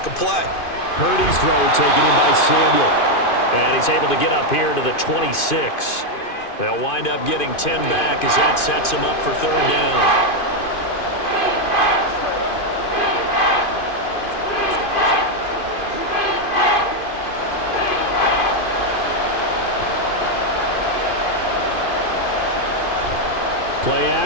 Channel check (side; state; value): right; late; 2.5 ms